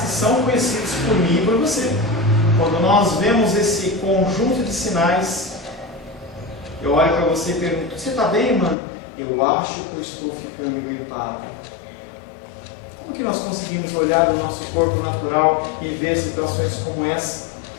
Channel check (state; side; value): drops out; right; at 8.8 s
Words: são conhecidos por mim e por você. Quando nós vemos esse conjunto de sinais, eu olho para você e pergunto: você está bem, mano? Eu acho que eu estou ficando gripado. Como que nós conseguimos olhar o nosso corpo natural e ver situações como essa,